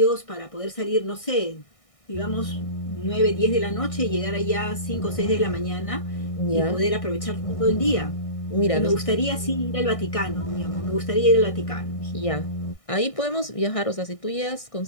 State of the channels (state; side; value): late; right; 1.6 ms